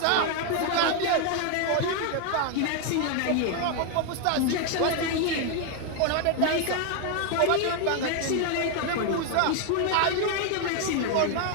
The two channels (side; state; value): both; different; correlation 0.01